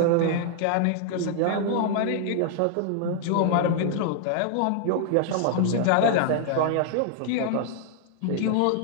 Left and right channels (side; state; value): both; different; correlation 0.00